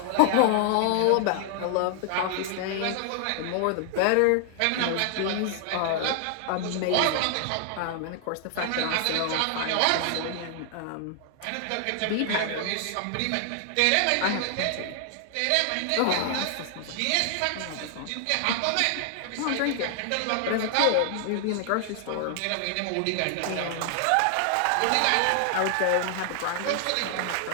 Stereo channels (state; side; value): different; both; correlation 0.00